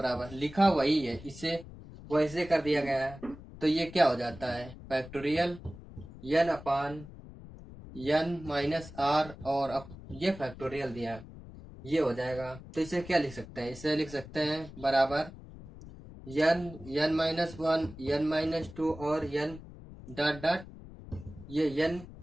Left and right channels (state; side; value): noise; left; rumble, 16 dB below the sound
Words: लिखा वही है, इसे वैसे कर दिया गया है। तो ये क्या हो जाता है, factorial N upon N minus are, और अब ये फैक्टोरियल दिया है, ये हो जाएगा। तो इसे क्या लिख सकते हैं, इसे लिख सकते हैं बराबर N N minus one N minus two और एन डॉट डॉट, ये एन